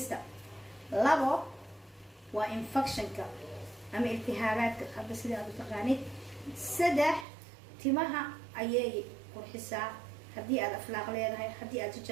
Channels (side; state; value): left; drops out; at 7.2 s